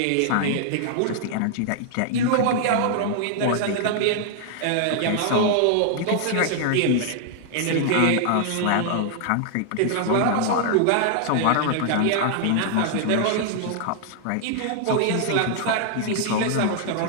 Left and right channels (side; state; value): both; different; correlation -0.01